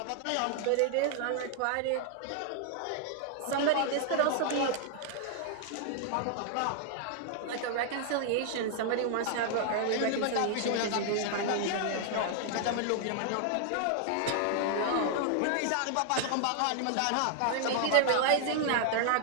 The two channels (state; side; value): different; both; correlation 0.00